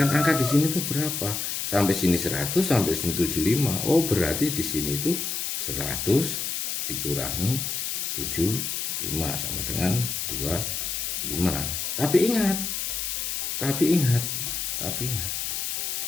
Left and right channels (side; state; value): left; noise; hiss, 2 dB below the sound